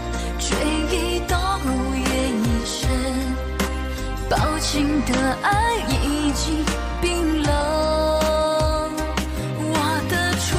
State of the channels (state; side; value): identical; both; correlation 1.00